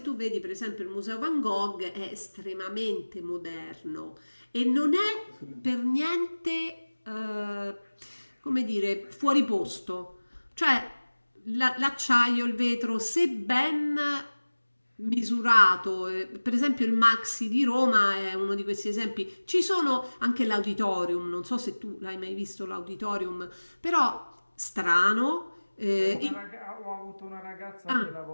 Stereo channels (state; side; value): inverted; both; correlation -1.00